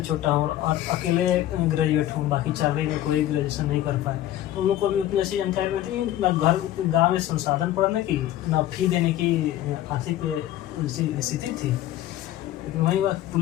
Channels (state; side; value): quieter; right; 13.4 dB